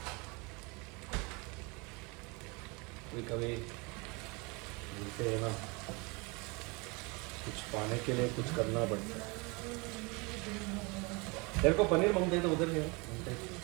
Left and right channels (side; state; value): left; quieter; 28.5 dB